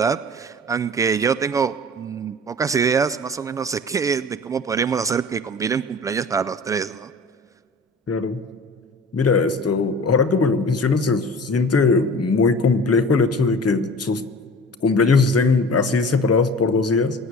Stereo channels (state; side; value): normal; both; correlation 0.40